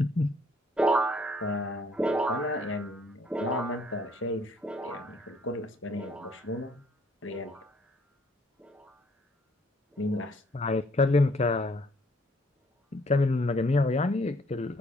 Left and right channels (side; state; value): both; normal; correlation 0.63